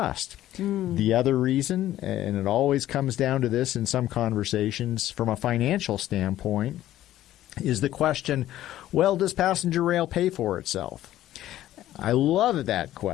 The other reason, and it always comes down to this in some conversations from a financial standpoint, is the question, well, does passenger rail pay for itself? I love that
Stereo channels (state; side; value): quieter; right; 13.6 dB